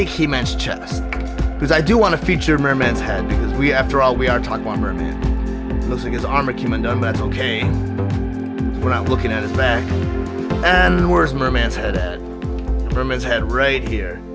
He-Man's chest. because I do want to feature Mer-Man's head, because after all, we are talking about Mer-Man. It looks like his armor came undone, but that's okay. We're not looking at his back. And where's Mer-Man's head at? Mer-Man's head right here.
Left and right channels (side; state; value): both; identical; correlation 1.00